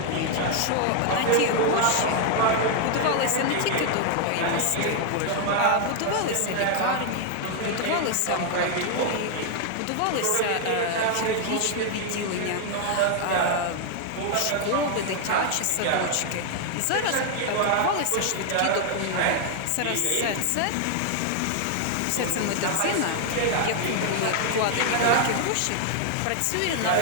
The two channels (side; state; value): both; different; correlation 0.00